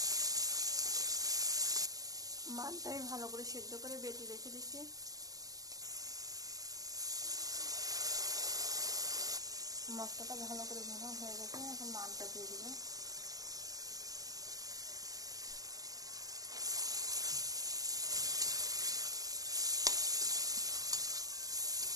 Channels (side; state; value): left; late; 0.17 ms